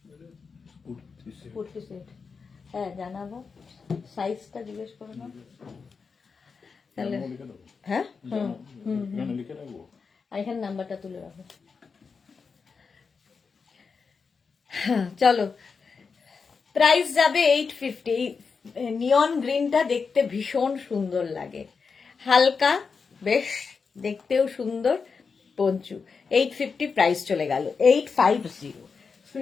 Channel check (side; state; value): right; quieter; 5.2 dB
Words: কুর্তি সেট, হ্যাঁ জানাবো। সাইজটা জিজ্ঞেস করো না তাহলে। হ্যাঁ এখানে নাম্বারটা তুলে রাখো। হ্যাঁ চলো, প্রাইস যাবে 850। নিয়ন গ্রিনটা দেখতে ভীষণ সুন্দর লাগে, হালকা, বেশ দেখতেও সুন্দর। পঞ্চু 850, প্রাইস চলে গেল 850।